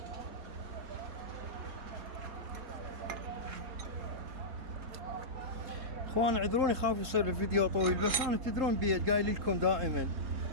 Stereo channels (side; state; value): left; late; 3.7 ms